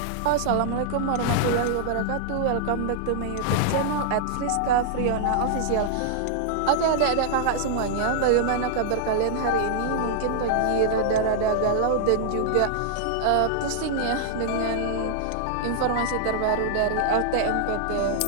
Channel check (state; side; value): different; both; correlation -0.01